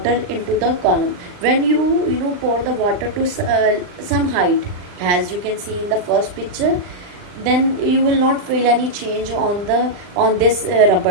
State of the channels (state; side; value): late; left; 39 ms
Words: into the column. When you pour the water to some height, as you can see in the first picture, then you will not feel any change on this